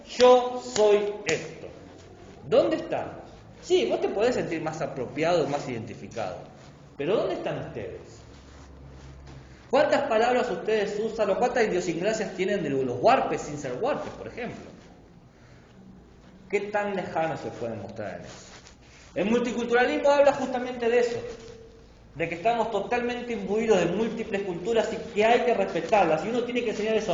yo soy esto. ¿Dónde estamos? Sí, vos te podés sentir más apropiado, más identificado. Pero ¿dónde están ustedes? ¿Cuántas palabras ustedes usan o cuántas idiosincrasias tienen de los huarpes sin ser huarpes, por ejemplo? ¿Qué tan lejanos se pueden mostrar en eso? El multiculturalismo habla justamente de eso, de que estamos totalmente imbuidos de múltiples culturas y que hay que respetarlas. Y uno tiene que enseñar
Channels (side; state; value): both; identical; correlation 1.00